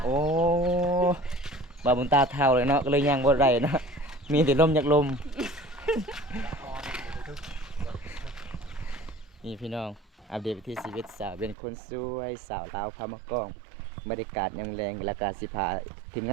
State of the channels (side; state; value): left; drops out; at 11.6 s